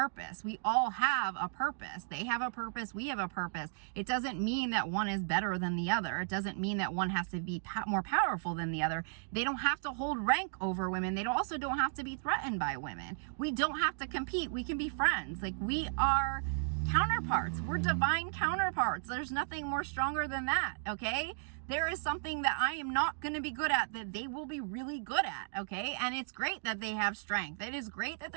We all have a purpose. They have a purpose. We have a purpose. It doesn't mean that one is better than the other. It doesn't mean that one has to be more powerful than the other. They don't have to hold rank over women. They also don't have to be threatened by women. We don't have to compete. We can be friends. Like, we are counterparts. We're divine counterparts. There's nothing more stronger than that, okay? There is something that I am not going to be good at that they will be really good at, okay? And it's great that they have strength. It is great that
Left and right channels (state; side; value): silent; left; digital silence